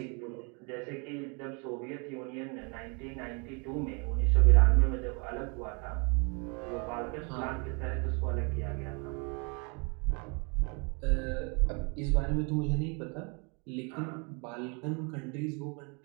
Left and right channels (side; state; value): left; quieter; 33.6 dB